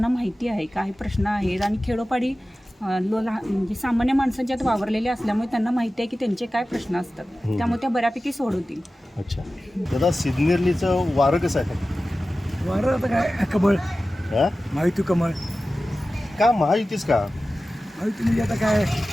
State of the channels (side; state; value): both; normal; correlation 0.95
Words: माहिती आहे काय प्रश्न आहेत आणि खेडोपाडी म्हणजे सामान्य माणसांच्यात वावरलेले असल्यामुळे त्यांना माहिती आहे की त्यांचे काय प्रश्न असतात, त्यामुळे त्या बऱ्यापैकी सोडवतील. अच्छा दादा, सिन्नरलीचं वारं कसं आहे? वारं आता काय कमळ, हा? माहिती कमळ. का महायुतीच का? माहिती म्हणजे आता काय